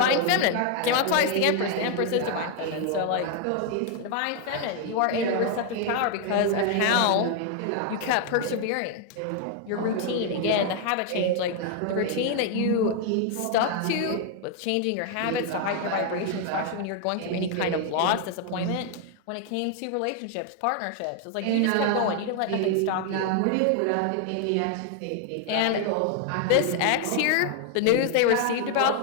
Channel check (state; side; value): different; both; correlation 0.00